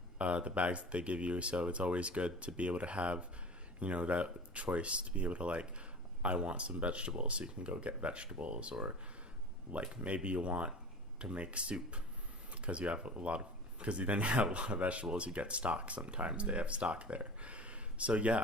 the bags that they give you. So it's always good to be able to have that choice, to be able to I want some vegetables, so you can go get vegetables, or maybe you want to make soup because you have because you then have a lot of vegetables, you get stock. Sometimes they have stock there. So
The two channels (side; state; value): both; normal; correlation 0.37